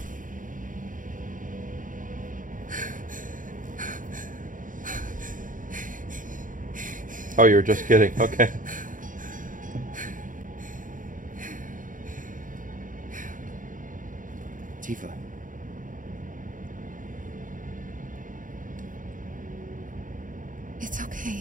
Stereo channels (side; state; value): left; late; 0.38 ms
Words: Oh, you were just kidding. Okay. Tifa. It's